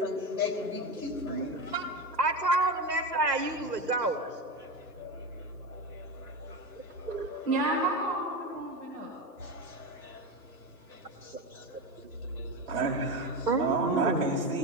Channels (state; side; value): normal; both; correlation 0.19